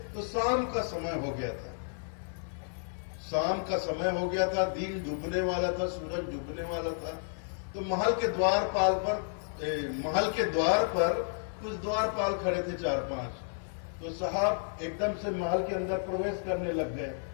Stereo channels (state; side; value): silent; right; 57 dB below the other